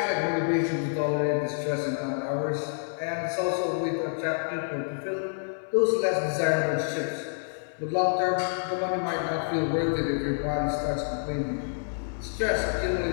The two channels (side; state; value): right; silent; 59 dB below the other